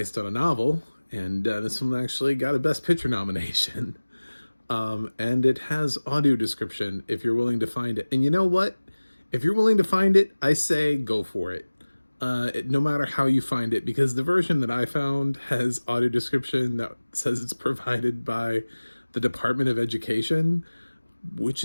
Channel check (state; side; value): inverted; both; correlation -1.00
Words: on a novel, and this one actually got a Best Picture nomination. And it has audio description if you're willing to find it. And you know what? If you're willing to find it, I say go for it. No matter how you find it, because the version that I found has audio description that says it's provided by the Department of Education, which